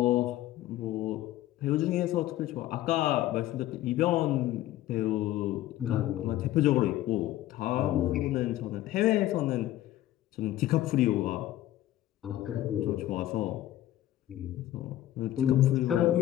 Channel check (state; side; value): quieter; right; 14.2 dB